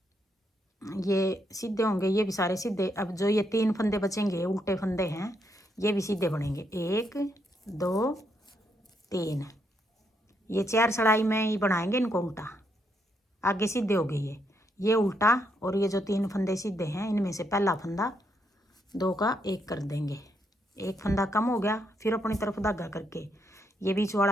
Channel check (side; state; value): both; normal; correlation 0.77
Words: ये सीधे होंगे, ये भी सारे सीधे। अब जो ये 3 फंदे बचेंगे उल्टे फंदे हैं, ये भी सीधे बनेंगे, 1 2 3। ये 4 सड़ाई में ही बनाएंगे इनको उल्टा, आगे सीधे हो गए ये उल्टा। और ये जो 3 फंदे सीधे हैं, इनमें से पहला फंदा 2 का 1 कर देंगे, एक फंदा कम हो गया। फिर अपनी तरफ धागा करके ये बीच